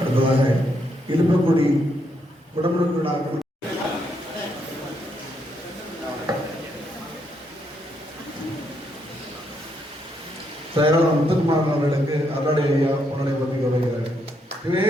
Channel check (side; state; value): both; normal; correlation 0.76